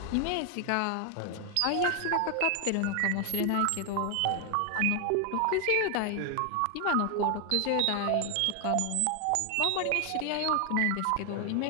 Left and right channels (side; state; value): both; different; correlation 0.00